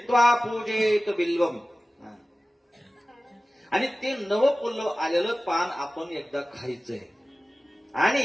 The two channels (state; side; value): normal; both; correlation 0.96